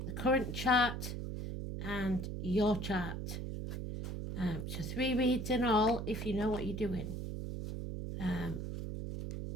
The current chart and your chart. So 3 reads in all if you know what you're doing.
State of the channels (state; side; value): noise; right; hum, 5 dB below the sound